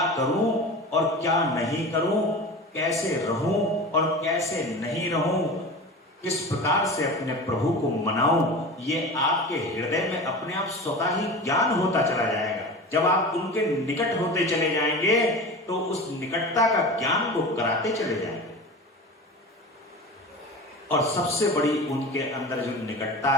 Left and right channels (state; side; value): normal; both; correlation 0.32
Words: करूं और क्या नहीं करूं, कैसे रहूं और कैसे नहीं रहूं, किस प्रकार से अपने प्रभु को मनाऊं। ये आपके हृदय में अपने आप स्वतः ही ज्ञान होता चला जाएगा। जब आप उनके निकट होते चले जाएंगे तो उस निकटता का ज्ञान को कराते चले जाएंगे। और सबसे बड़ी उनके अंदर जो निकटता